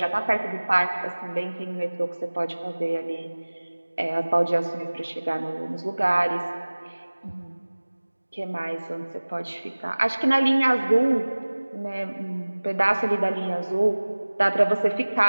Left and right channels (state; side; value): inverted; both; correlation -1.00